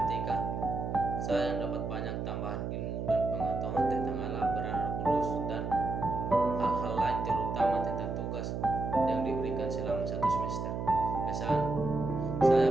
saya dapat banyak tambahan ilmu dan pengetahuan tentang Allah, peran Roh Kudus, dan hal-hal lain, terutama tentang tugas yang diberikan selama 1 semester. Kesan, saya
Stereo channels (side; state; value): right; noise; hum, 3 dB below the sound